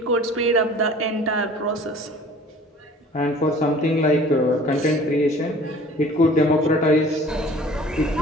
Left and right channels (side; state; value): both; normal; correlation 0.48